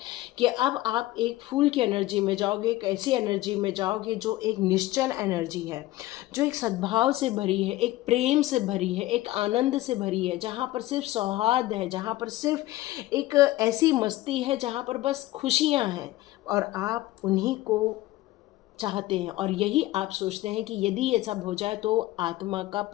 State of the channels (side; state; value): right; quieter; 16.9 dB